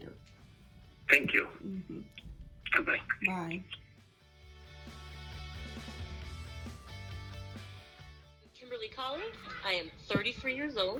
Thank you. Goodbye. Bye. Kimberly Collins. I am 33 years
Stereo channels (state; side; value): identical; both; correlation 1.00